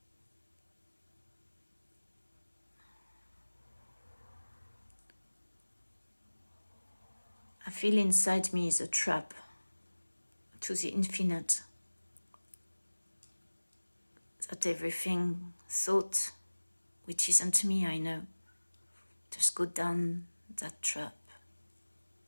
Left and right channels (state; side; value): inverted; both; correlation -1.00